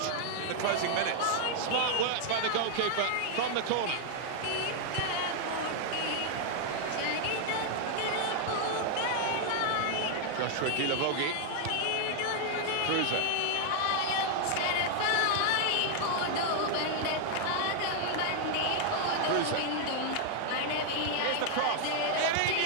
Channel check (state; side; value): different; both; correlation 0.00